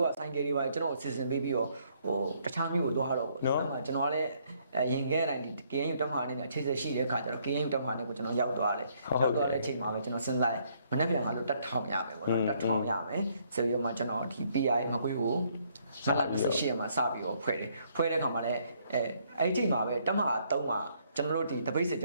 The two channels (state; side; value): inverted; both; correlation -0.68